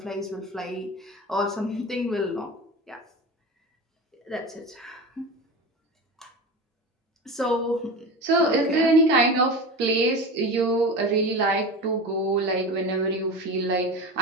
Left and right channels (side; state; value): both; normal; correlation 0.27